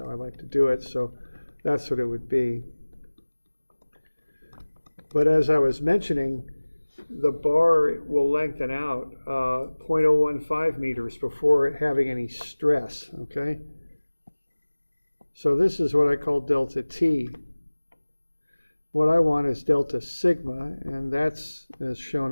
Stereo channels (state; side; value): inverted; both; correlation -1.00